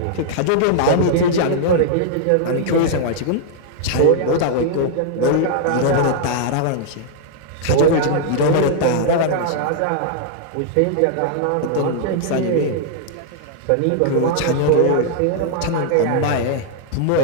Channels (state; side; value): different; both; correlation -0.01